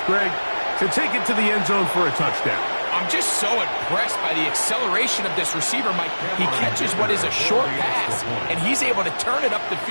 Greg, to take it to the end zone for a touchdown. I'm just so impressed by the acceleration of this receiver, Mike. He catches what is a short pass, and he's able to turn it up the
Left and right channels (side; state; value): both; inverted; correlation -1.00